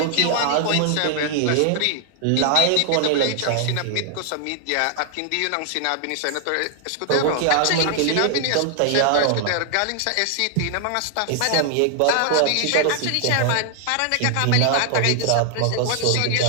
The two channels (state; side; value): different; both; correlation 0.00